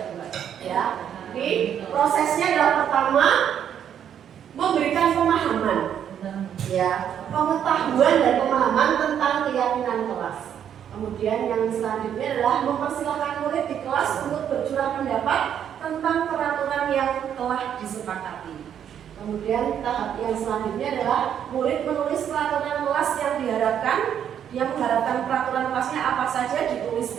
buat ya. Jadi prosesnya adalah pertama memberikan pemahaman ya, pengetahuan dan pemahaman tentang keyakinan kelas. Kemudian yang selanjutnya adalah mempersilahkan murid di kelas untuk bercurah pendapat tentang peraturan yang telah disepakati. Kemudian tahap yang selanjutnya adalah murid menulis peraturan kelas yang diharapkan. Dia mengharapkan peraturan kelasnya apa saja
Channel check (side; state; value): left; quieter; 9.2 dB